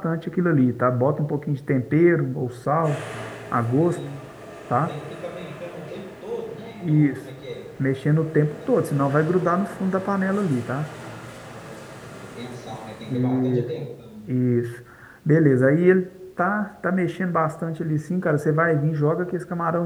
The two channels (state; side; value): identical; both; correlation 1.00